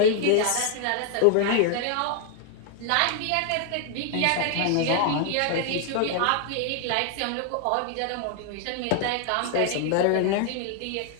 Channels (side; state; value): both; different; correlation 0.00